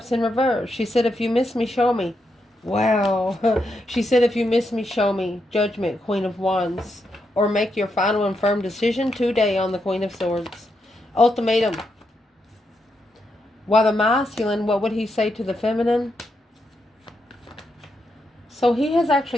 in reverse. She said, if you miss me, show me. Wow. She said, if you miss me, show me. Judgment, Queen of Wands. Or make your final and firm decision today on the Queen of Swords. Ultimatum. While the masculine, what would he say to the feminine? So he has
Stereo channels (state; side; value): normal; both; correlation 0.83